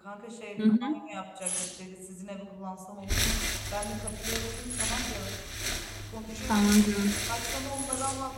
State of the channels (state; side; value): identical; both; correlation 1.00